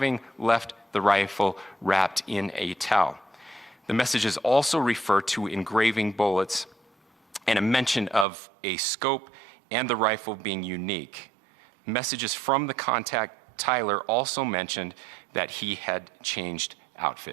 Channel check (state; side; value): drops out; left; at 8.2 s